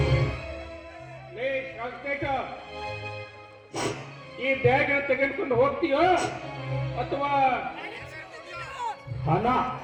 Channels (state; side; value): identical; both; correlation 1.00